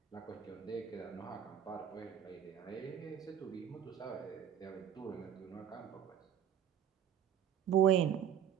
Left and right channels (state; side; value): quieter; left; 9.3 dB